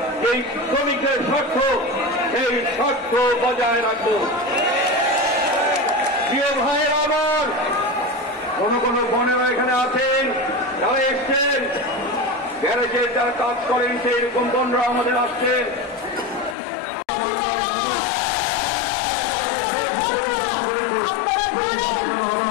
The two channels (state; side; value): drops out; right; at 16.6 s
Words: এই শ্রমিকদের স্বার্থ, এই স্বার্থ বজায় রাখব। প্রিয় ভাইয়েরা আমার, কোন কোন বোনেরা এখানে আছেন, যারা এসছেন গ্যারেজে যারা কাজ করেন, সেই রকম বোনরা আমাদের আসছেন।